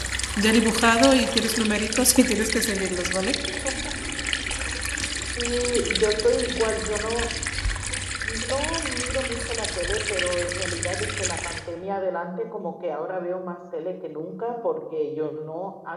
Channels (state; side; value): identical; both; correlation 1.00